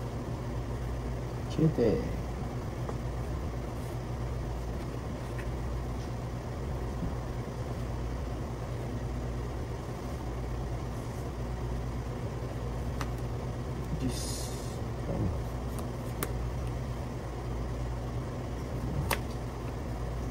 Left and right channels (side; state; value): both; identical; correlation 1.00